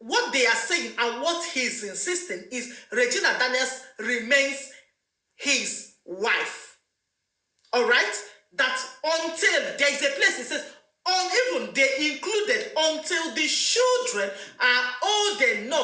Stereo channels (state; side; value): identical; both; correlation 1.00